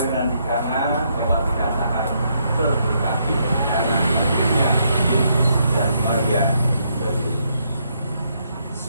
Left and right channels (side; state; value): both; inverted; correlation -0.75